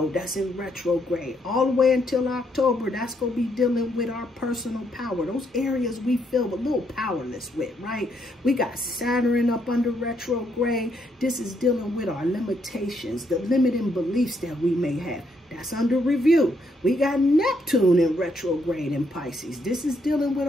that's in retrograde all the way until October. That's going to be dealing with our personal power, those areas we feel a little powerless with, right? We got Saturn up under retrograde. This is dealing with our limitations, the limiting beliefs that we may have. That's under review. We got Neptune in retrograde in Pisces. This is dealing with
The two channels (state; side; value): normal; both; correlation 0.74